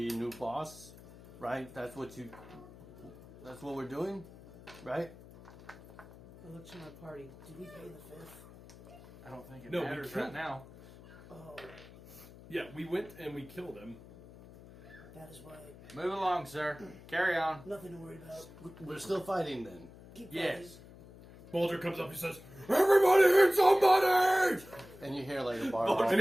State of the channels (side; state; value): left; noise; hum, 19 dB below the sound